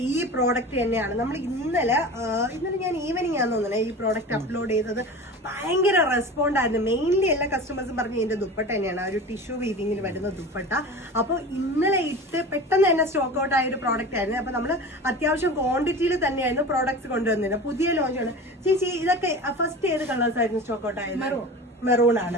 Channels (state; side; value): normal; both; correlation 0.34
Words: ഈ പ്രോഡക്റ്റ് തന്നെയാണ് നമ്മൾ ഇന്നലെ ഞാൻ ഈവനിങ് ആണെന്ന് തോന്നുന്നു ഈ പ്രോഡക്റ്റ് അപ്ലോഡ് ചെയ്തത്. ഭയങ്കര റെസ്പോണ്ട് ആയിരുന്നു. മെയിൻലി എല്ലാ കസ്റ്റമേഴ്സും പറഞ്ഞു ഇതിന്റെ ദുപ്പട്ട തന്നെയാണ്, ഒരു ടിഷ്യൂ വീവിങ്ങിൽ വരുന്ന ദുപ്പട്ട. അപ്പോൾ ഇന്നലെ ഇട്ട് പെട്ടെന്ന് തന്നെ സ്റ്റോക്ക് ഔട്ട് ആയ ഒരു പ്രോഡക്റ്റ് ആയിരുന്നു. അപ്പൊ നമ്മൾ അത്യാവശ്യം ക്വാണ്ടിറ്റിയിൽ തന്നെയായിരുന്നു പ്രോഡക്ട്സ് കൊണ്ടുവന്നിരുന്നത്. പുതിയ ലോഞ്ചാണ്. ചേച്ചി ഇതൊക്കെ ഫസ്റ്റ് ഏത് കളേഴ്സ് ആയിരുന്നു സ്റ്റോക്ക് ഔട്ട് ആയത്? മെറൂൺ ആണ്.